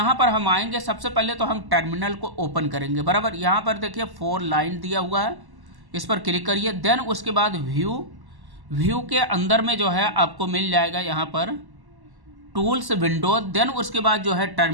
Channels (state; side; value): late; left; 1.1 ms